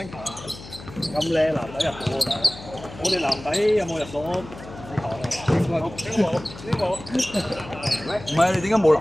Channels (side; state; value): left; noise; hum, 15 dB below the sound